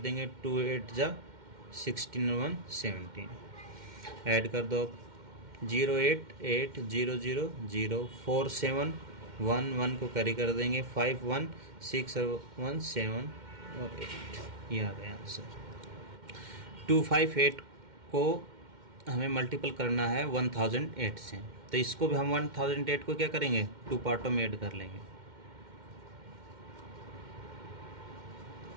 2 8 जा 16 और 1 17, ऐड कर दो 0 8 8 0 0 0 4 7 1 1 को कैरी कर देंगे 5 1 6 और 1 7 और 8, ये आ गया आंसर। 258 को हमें मल्टीपल करना है 1008 से, तो इसको भी हम 1008 को क्या करेंगे, 2 पार्टों में ऐड कर लेंगे।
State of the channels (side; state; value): left; late; 2.1 ms